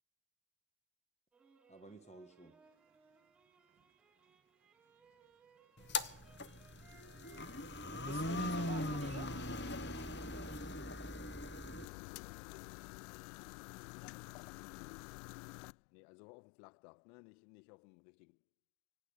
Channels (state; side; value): drops out; right; at 11.9 s